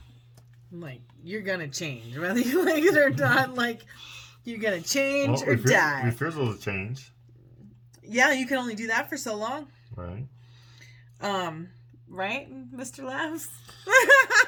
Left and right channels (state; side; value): identical; both; correlation 1.00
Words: Like, you're going to change. Whether you like it or not, like, you're going to change or die. Refusal to change. Yeah, you can only do that for so long. Right. Right, Mr. Laughs?